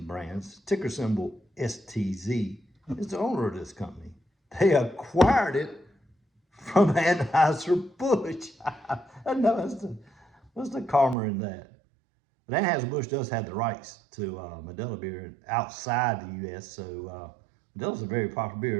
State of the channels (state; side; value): drops out; left; at 11.2 s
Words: Brands, ticker symbol STZ, is the owner of this company. They acquired it from Anheuser-Busch. I know, what's the karma in that? But Anheuser-Busch does have the rights to Modelo beer outside the U.S., so Modelo's a very popular